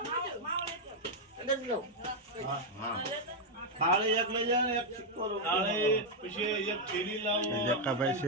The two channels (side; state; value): both; normal; correlation 0.00